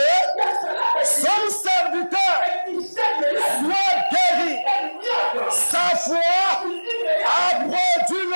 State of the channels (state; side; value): inverted; both; correlation -1.00